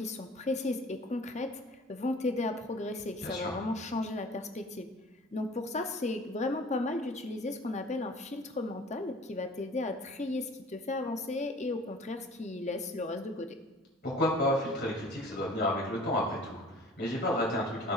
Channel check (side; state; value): both; normal; correlation 0.48